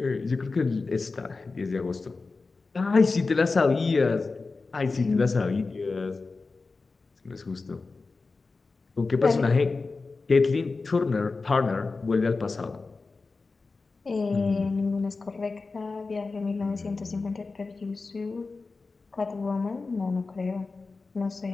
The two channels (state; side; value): quieter; right; 4.0 dB